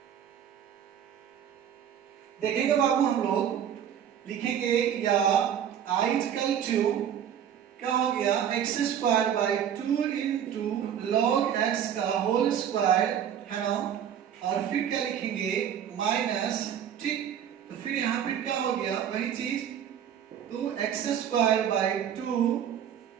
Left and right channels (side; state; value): left; quieter; 9.3 dB